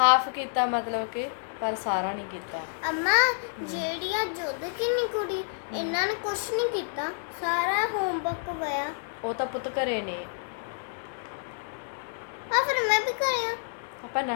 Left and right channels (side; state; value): right; silent; digital silence